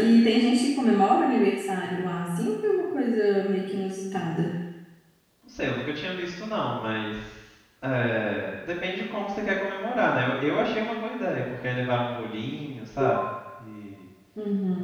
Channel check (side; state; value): both; identical; correlation 1.00